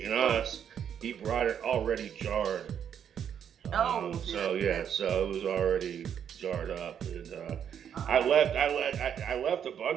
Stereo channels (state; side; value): quieter; left; 8.6 dB